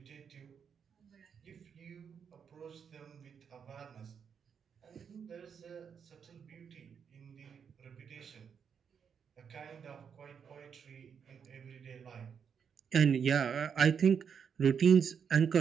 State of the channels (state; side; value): quieter; left; 7.1 dB